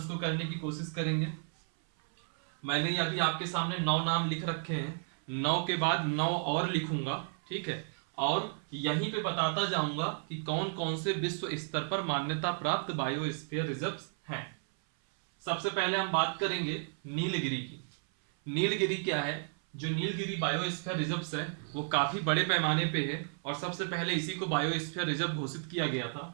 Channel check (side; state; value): left; silent; 56 dB below the other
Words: को करने की कोशिश करेंगे। मैंने अभी आपके सामने 9 नाम लिख रखे हैं, 9 के बाद 9 और लिखूंगा। ठीक है, और यहीं पे बताता जाऊंगा कि कौन कौन से विश्व स्तर पर मान्यता प्राप्त बायोस्फीयर रिजर्व्स हैं। सबसे पहले हम बात करेंगे नीलगिरी की। नीलगिरी क्या है? जो नीलगिरी बायोस्फीयर रिजर्व्स है वो काफी बड़े पैमाने पे है और सबसे पहले इसी को बायोस्फीयर रिजर्व घोषित किया गया था।